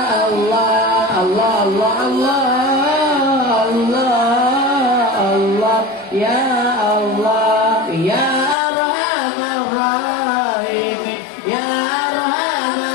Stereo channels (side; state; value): right; drops out; at 8.6 s